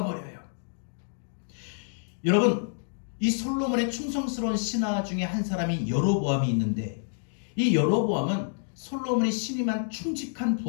버려요. 여러분 이 솔로몬의 충성스러운 신하 중에 한 사람이 여로보암이 있는데, 이 여로보암은 솔로몬이 신임한 충직한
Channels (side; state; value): right; silent; digital silence